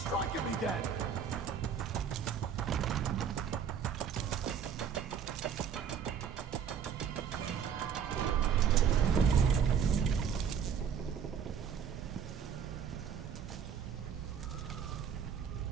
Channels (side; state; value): left; quieter; 7.5 dB